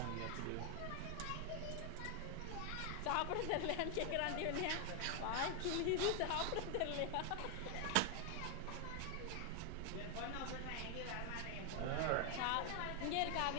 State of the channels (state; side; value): different; both; correlation 0.00